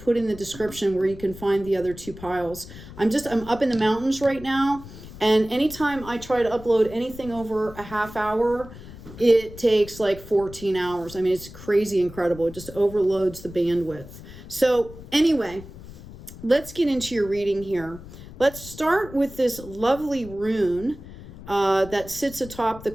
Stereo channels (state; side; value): noise; left; rumble, 16 dB below the sound